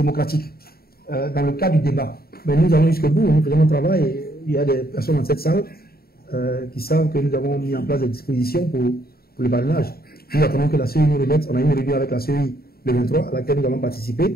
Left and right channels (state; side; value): late; right; 0.45 ms